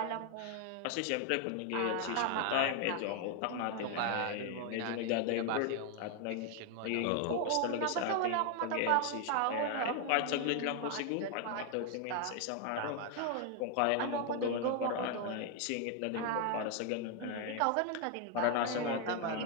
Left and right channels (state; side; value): different; both; correlation 0.01